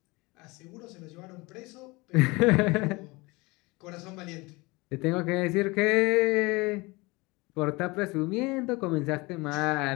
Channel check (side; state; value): right; quieter; 24.2 dB